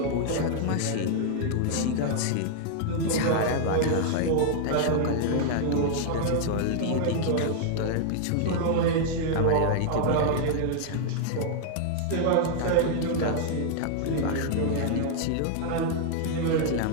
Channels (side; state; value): both; different; correlation 0.00